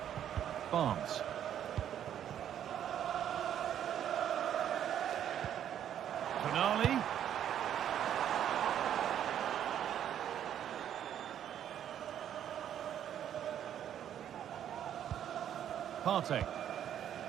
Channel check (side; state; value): left; quieter; 10.1 dB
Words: Barnes. Tonali. Partey.